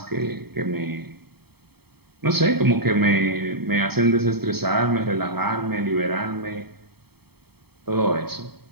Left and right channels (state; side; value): late; left; 0.96 ms